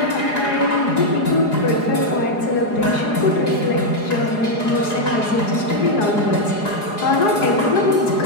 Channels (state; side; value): late; right; 4.8 ms